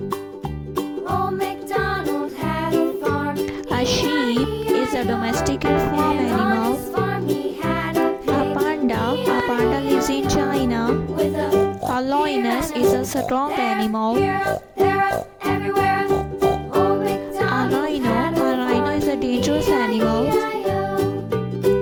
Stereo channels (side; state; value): both; identical; correlation 1.00